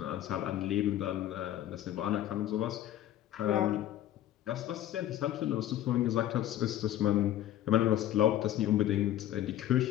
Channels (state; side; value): quieter; right; 12.5 dB